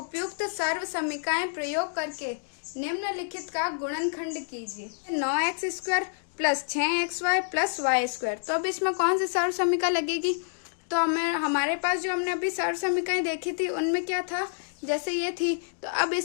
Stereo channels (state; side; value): silent; right; digital silence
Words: सर्व समीकरण प्रयोग करके निम्नलिखित का गुणनखंड कीजिए। 9x square plus 6xy plus y square. तो अब इसमें कौन सी सर्व समीकरण लगेगी, तो हमारे पास जो हमने अभी सर्व समीकरण देखी थी उनमें क्या था, जैसे ये थी, तो अब